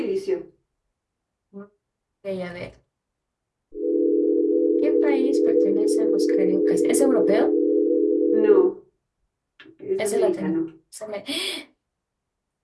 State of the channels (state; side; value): identical; both; correlation 1.00